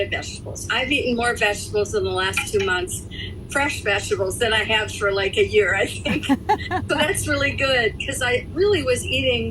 vegetables. I've eaten more vegetables in the last 2 months, fresh vegetables, than I have for like a year, I think. So that's really good, because I really was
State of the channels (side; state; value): both; identical; correlation 1.00